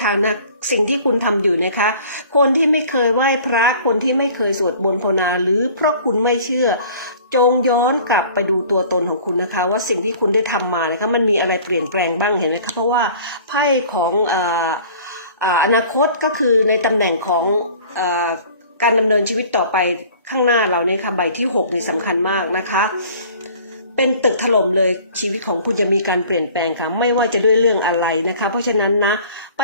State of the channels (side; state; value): both; inverted; correlation -0.49